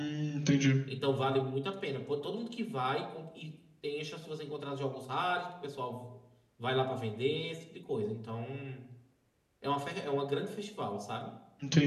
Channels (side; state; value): both; identical; correlation 1.00